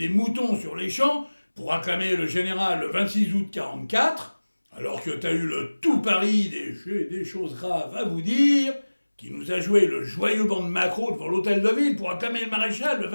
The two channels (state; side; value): inverted; both; correlation -1.00